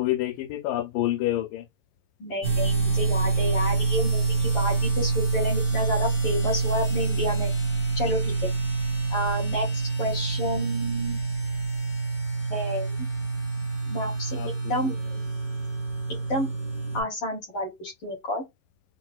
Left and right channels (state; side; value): late; right; 11 ms